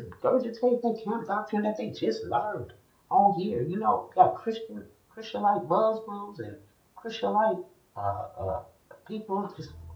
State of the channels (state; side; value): identical; both; correlation 1.00